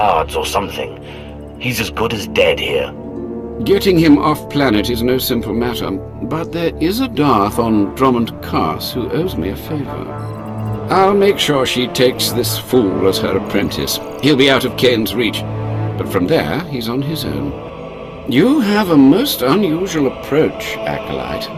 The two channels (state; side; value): identical; both; correlation 1.00